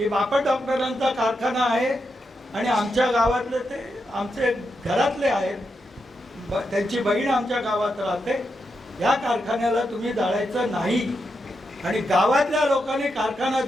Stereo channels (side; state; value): both; normal; correlation 0.85